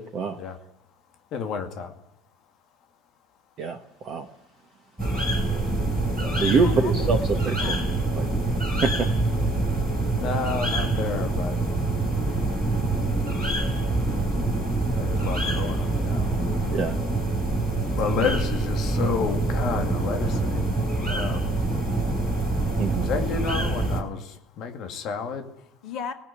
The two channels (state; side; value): normal; both; correlation 0.63